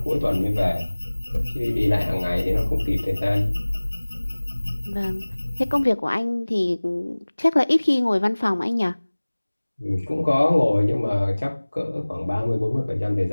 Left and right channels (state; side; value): inverted; both; correlation -1.00